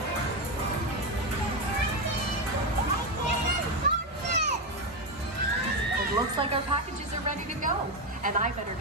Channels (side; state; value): both; normal; correlation 0.10